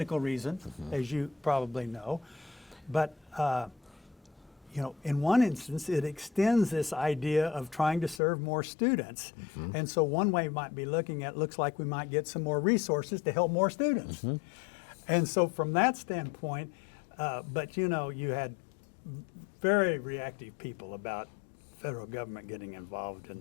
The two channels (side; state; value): right; drops out; at 8.2 s